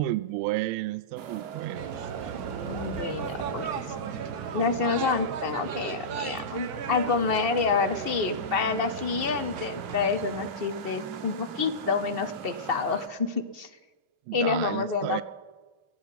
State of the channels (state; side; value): late; left; 2.7 ms